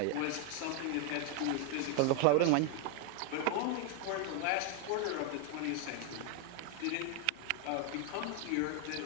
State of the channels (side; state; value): both; different; correlation 0.01